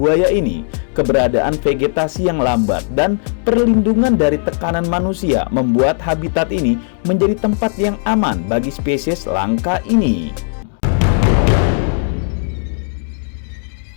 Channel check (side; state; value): right; silent; digital silence